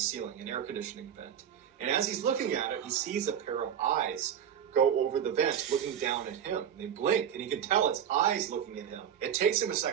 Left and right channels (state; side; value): quieter; left; 9.1 dB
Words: ceiling, an air conditioning vent. And as he's looking at it, he sees a pair of eyes go over the vent, looking down at him. They blink, and he can tell it's eyes looking at him. It takes him a